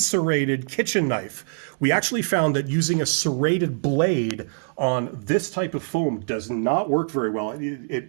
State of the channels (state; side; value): silent; left; digital silence